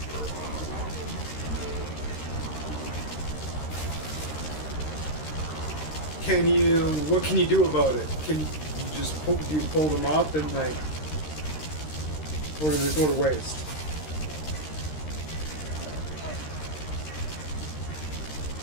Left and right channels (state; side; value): late; right; 13 ms